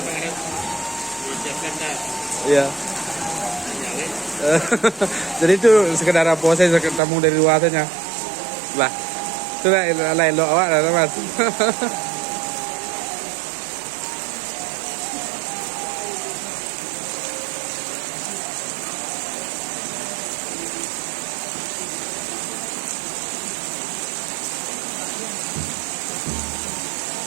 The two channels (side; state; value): left; drops out; at 7.0 s